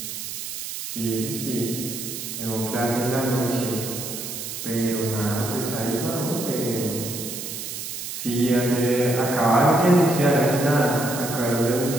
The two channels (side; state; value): right; noise; hiss, 7 dB below the sound